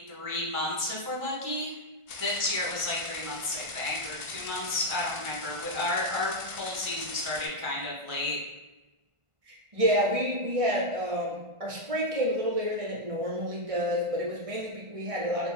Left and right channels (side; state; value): left; late; 1.5 ms